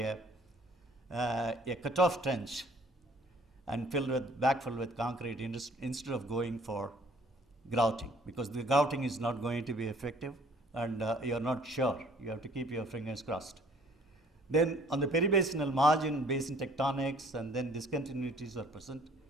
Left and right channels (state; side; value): normal; both; correlation 0.57